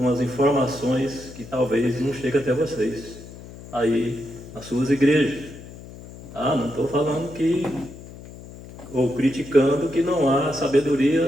informações que talvez não cheguem até vocês, aí nas suas igrejas. Não estou falando ou criticando que não há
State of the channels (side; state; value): left; noise; hum, 16 dB below the sound